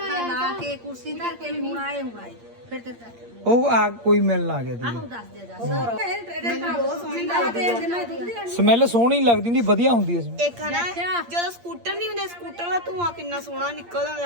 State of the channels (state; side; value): late; left; 8.6 ms